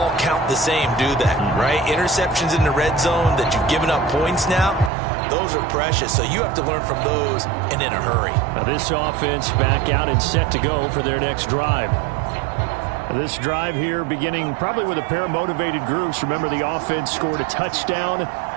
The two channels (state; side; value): drops out; left; at 4.9 s